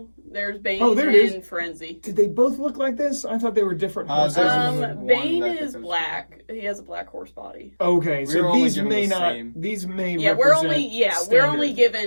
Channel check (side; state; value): both; inverted; correlation -1.00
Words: There's Bane there it is. and Frenzy. Did they both look like this? I thought they were different horses. Bane is black. He has a black horse body. Okay, so these may not. Same. These may. Yeah, we're only